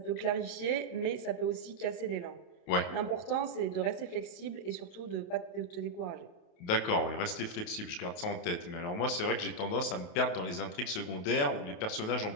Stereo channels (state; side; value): late; right; 28 ms